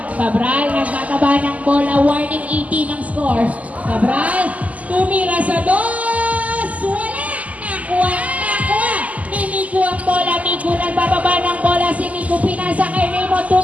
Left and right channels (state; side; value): late; left; 0.073 ms